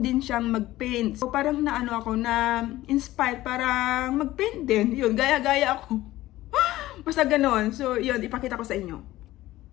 din siyang mag-paint. So, parang na-inspired parang mag-paint din. Yun, gaya-gaya ako. Basta ganon. So, yun, ipakita ko sa inyo.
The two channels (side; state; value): right; quieter; 16.2 dB